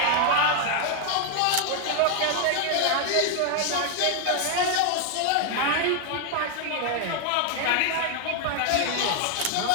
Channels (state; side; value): different; both; correlation 0.00